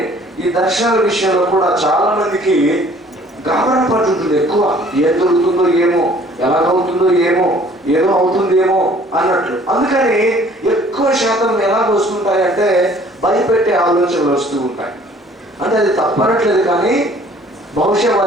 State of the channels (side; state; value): both; normal; correlation 0.55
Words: ఈ దర్శనాల విషయంలో కూడా చాలా మందికి గాబరా పడుతుంది ఎక్కువ. ఏం దొరుకుతుందో ఏమో, ఎలాగవుతుందో ఏమో, ఏదో అవుతుందేమో అన్నట్లు. అందుకని ఎక్కువ శాతం ఎలాగ వస్తుంటాయంటే భయపెట్టే ఆలోచనలు వస్తూ ఉంటాయి. అంటే అది తప్పనట్లేదు, కానీ బహుశా